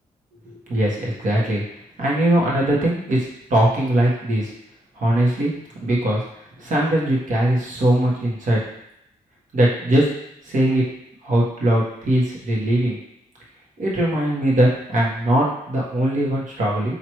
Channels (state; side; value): normal; both; correlation 0.80